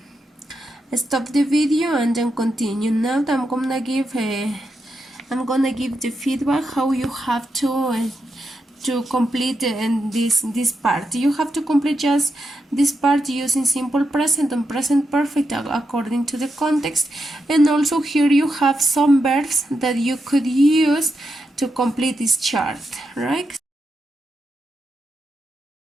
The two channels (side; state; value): both; normal; correlation 0.85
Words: stop the video and then continue. Now I'm gonna give the feedback how you have to complete this part. You have to complete just this part using simple present and present perfect according to the context, and also here you have some verbs that you could use to complete this chart, right?